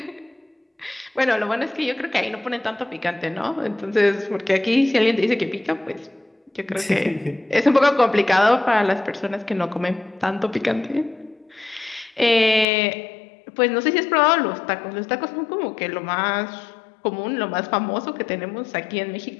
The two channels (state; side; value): drops out; right; at 12.7 s